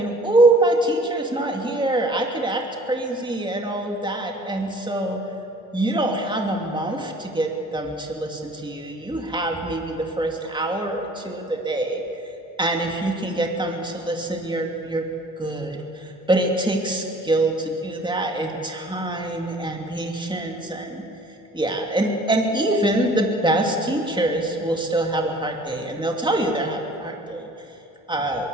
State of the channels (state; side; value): normal; both; correlation 0.50